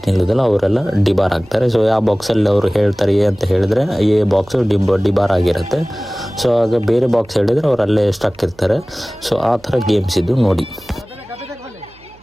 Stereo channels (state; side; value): noise; right; hum, 27 dB below the sound